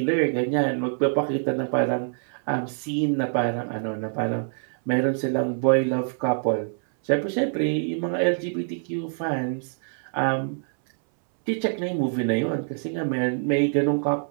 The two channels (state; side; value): silent; left; 62 dB below the other